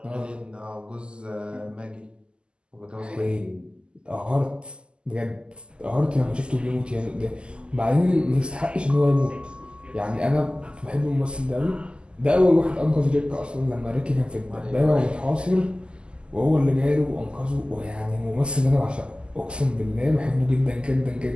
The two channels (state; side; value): late; left; 0.050 ms